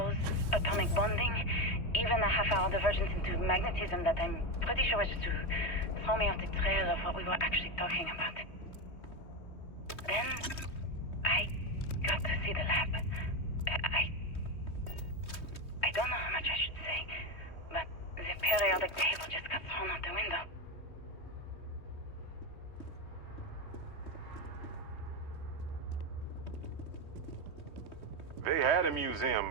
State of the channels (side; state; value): right; late; 3.2 ms